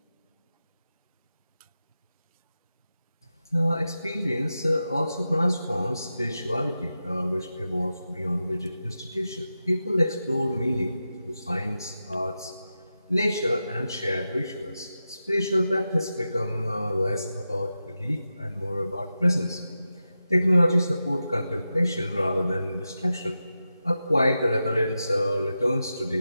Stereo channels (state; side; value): inverted; both; correlation -0.91